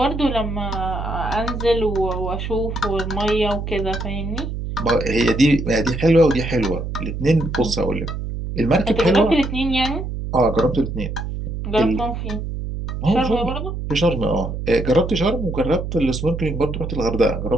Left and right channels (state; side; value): noise; right; hum, 5 dB below the sound